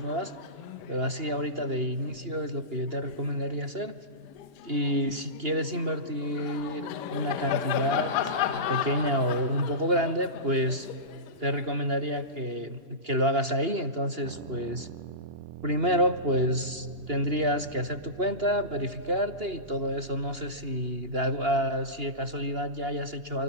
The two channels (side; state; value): left; late; 2.8 ms